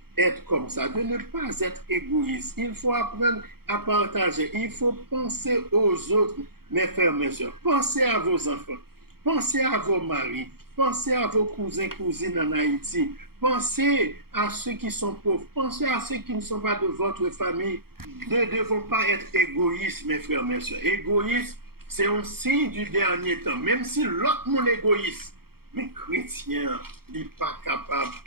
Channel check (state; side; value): late; left; 0.94 ms